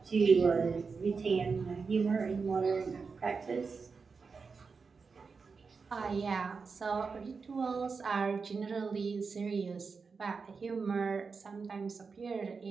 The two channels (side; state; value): left; quieter; 5.0 dB